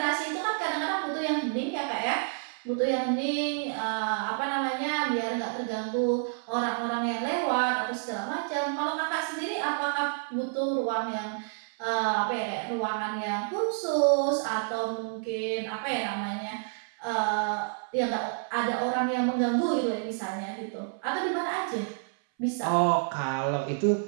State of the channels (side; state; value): left; silent; 58 dB below the other